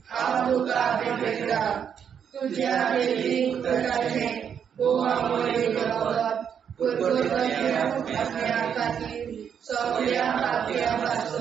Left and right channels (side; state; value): left; quieter; 7.9 dB